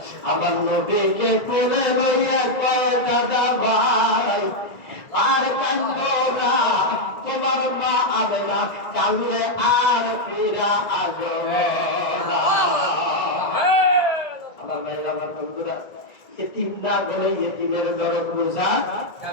আমার নবীকে কোলে লইয়া কয়, দাদা ভাই আর কান্দো না, তোমার মা আমেনা কান্দলে আর ফিরা আসবে না। আমার ভাইরা আমার বন্ধুরা, এতিম না বলে এতিমের দরদ বোঝা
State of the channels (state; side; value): late; right; 1.7 ms